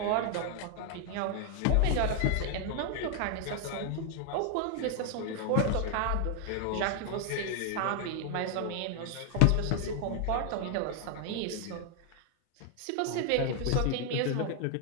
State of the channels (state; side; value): different; both; correlation 0.00